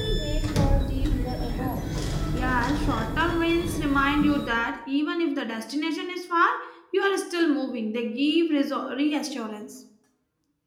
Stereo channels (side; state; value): both; identical; correlation 1.00